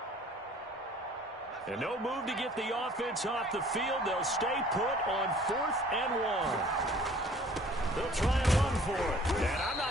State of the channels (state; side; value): normal; both; correlation 0.53